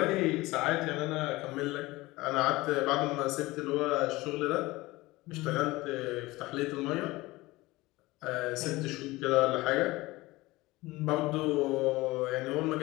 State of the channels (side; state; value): right; quieter; 20.3 dB